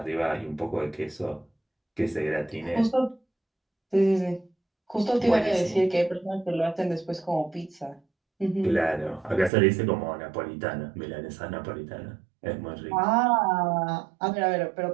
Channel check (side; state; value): left; drops out; at 9.5 s